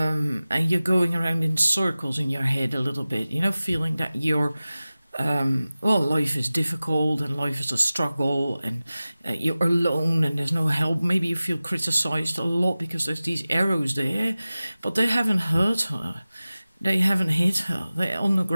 you're going around in circles in your head a little bit, you know, feeling that you're well, life is difficult and life is a struggle, and you're alone and there's no help. Maybe you feel criticized a lot because there's these arrows there, but they haven't hurt her, they haven't hit her, they're on the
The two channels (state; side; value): inverted; both; correlation -0.97